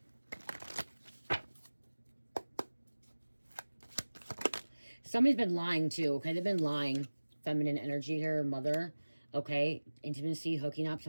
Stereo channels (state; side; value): inverted; both; correlation -1.00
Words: Somebody's been lying too, okay? They've been lying. Feminine energy here, mother. Okay, intimacy, hooking up.